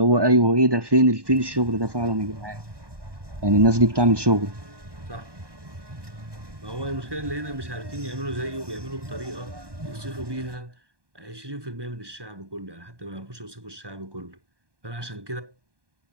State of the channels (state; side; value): late; left; 1.2 ms